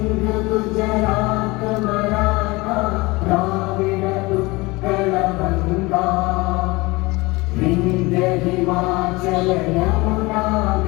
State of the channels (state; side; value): quieter; right; 23.0 dB